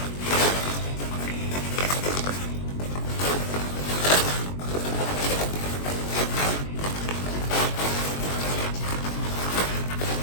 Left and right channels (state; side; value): late; right; 21 ms